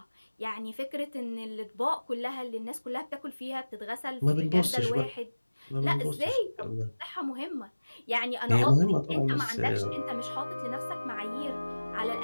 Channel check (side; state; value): both; inverted; correlation -1.00